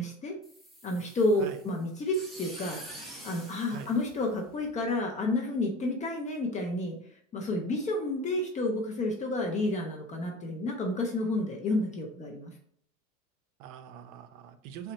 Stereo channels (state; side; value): normal; both; correlation 0.39